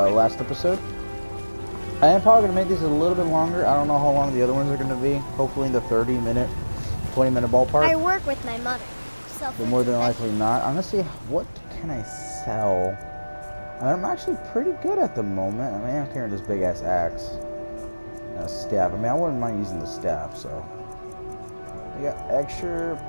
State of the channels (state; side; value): inverted; both; correlation -1.00